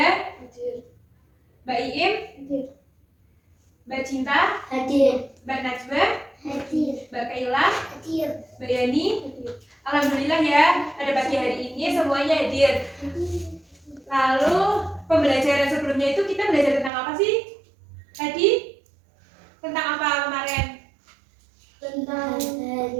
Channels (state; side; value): drops out; left; at 16.9 s